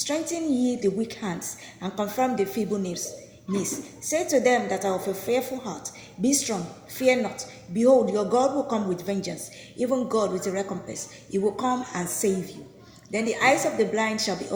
ye the weak hands and confirm the feeble knees. Say to them that are of a fearful heart, be strong, fear not. Behold, your God will come with vengeance, even God with a recompense. He will come and save you. Then the eyes of the blind shall be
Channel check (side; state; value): both; identical; correlation 1.00